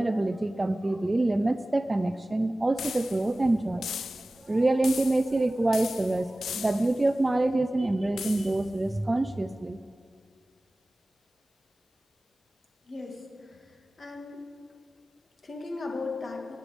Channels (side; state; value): both; normal; correlation 0.97